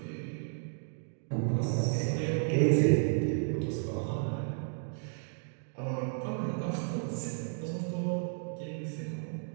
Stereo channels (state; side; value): silent; left; digital silence